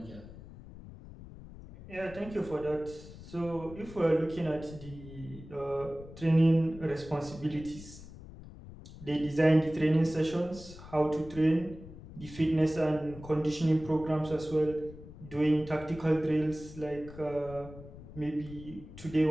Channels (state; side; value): noise; left; rumble, 16 dB below the sound